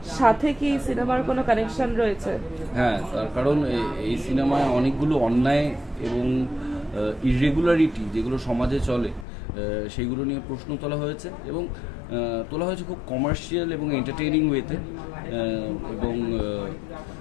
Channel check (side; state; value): right; drops out; at 9.2 s